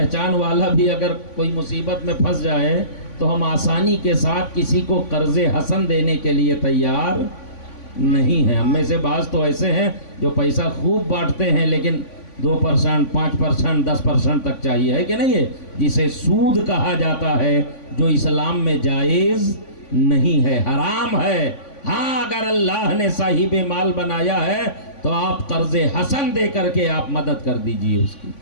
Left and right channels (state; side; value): late; right; 3.5 ms